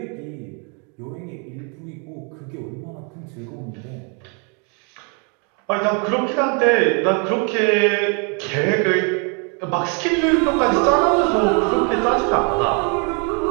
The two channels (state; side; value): quieter; left; 36.6 dB